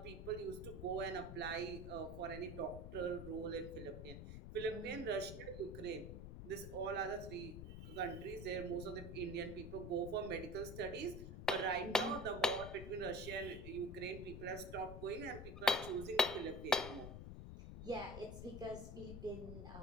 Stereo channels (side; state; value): left; noise; rumble, 8 dB below the sound